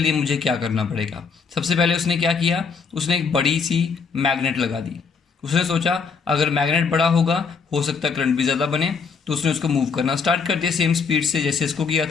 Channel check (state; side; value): quieter; right; 5.4 dB